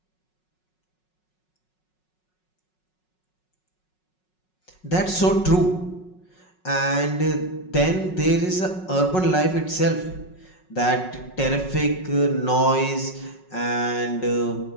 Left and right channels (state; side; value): late; right; 5.4 ms